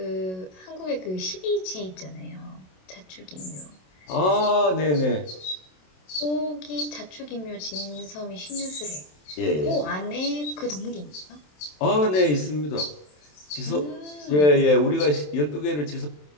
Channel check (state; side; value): late; right; 27 ms